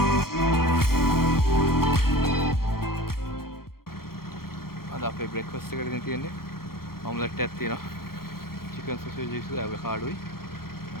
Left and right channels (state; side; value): late; right; 0.94 ms